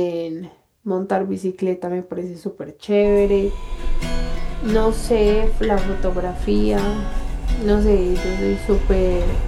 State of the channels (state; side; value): identical; both; correlation 1.00